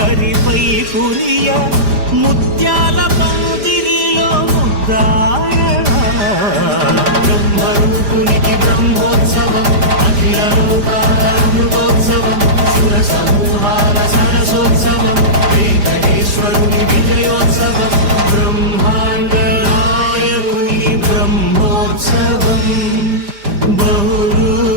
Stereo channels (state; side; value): late; left; 5.0 ms